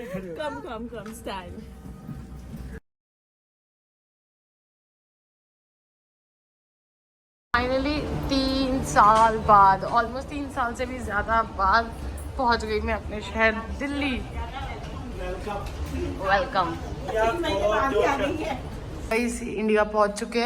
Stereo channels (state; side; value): identical; both; correlation 1.00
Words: Come, stand. Finally 3 साल बाद, ऑलमोस्ट 3 साल से भी ज़्यादा बाद पहुंच गई मैं अपने शहर दिल्ली। वेलकम। इंडिया पहुंच चुके